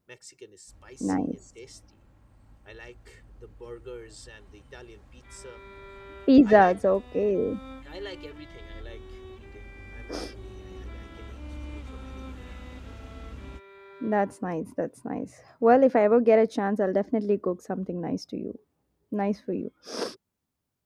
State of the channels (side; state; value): both; identical; correlation 1.00